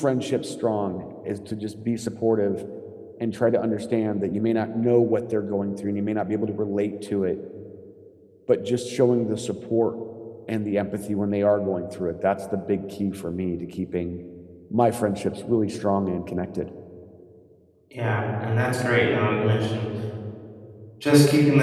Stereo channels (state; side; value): identical; both; correlation 1.00